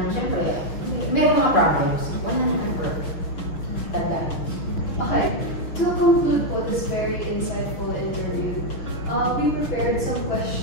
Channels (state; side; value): late; right; 6.5 ms